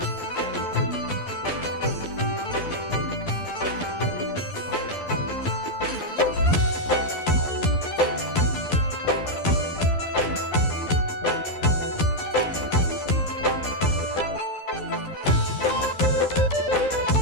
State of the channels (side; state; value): right; late; 12 ms